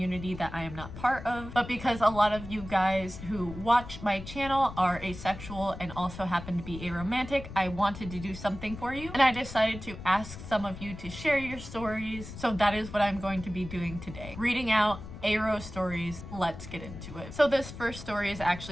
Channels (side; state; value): left; noise; rumble, 12 dB below the sound